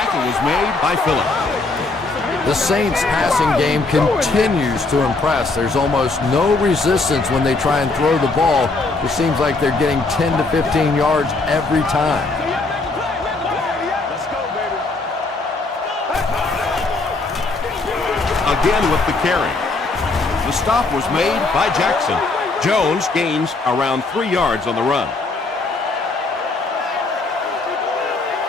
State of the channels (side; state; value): right; quieter; 3.5 dB